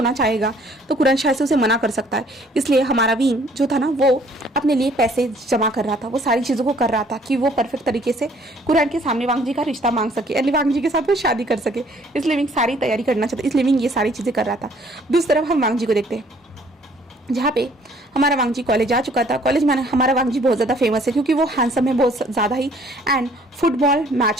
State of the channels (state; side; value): normal; both; correlation 0.60